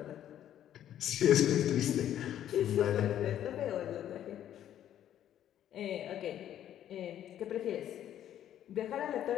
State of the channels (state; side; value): quieter; right; 11.1 dB